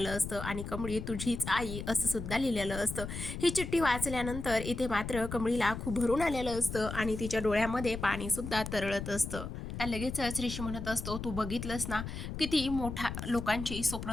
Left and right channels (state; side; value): noise; left; rumble, 7 dB below the sound